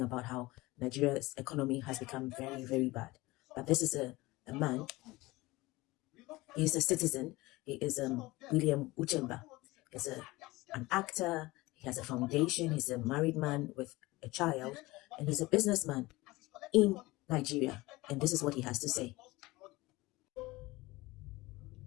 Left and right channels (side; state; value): right; quieter; 20.6 dB